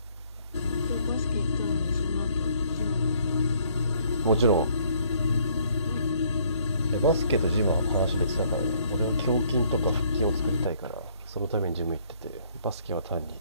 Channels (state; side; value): inverted; both; correlation -0.64